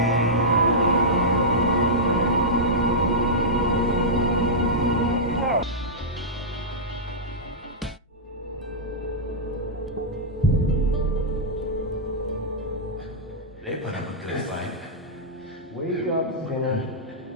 They put up a good fight. Wake up, sinner.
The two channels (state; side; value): normal; both; correlation -0.12